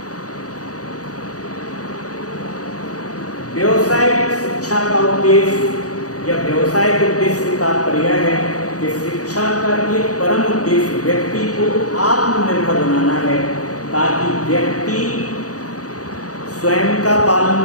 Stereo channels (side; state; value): right; late; 0.67 ms